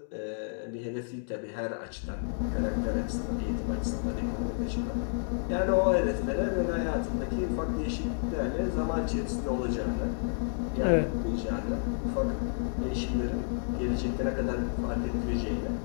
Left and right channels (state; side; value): silent; right; digital silence